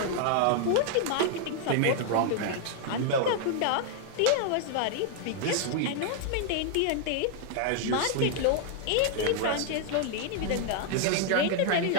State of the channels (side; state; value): both; different; correlation 0.00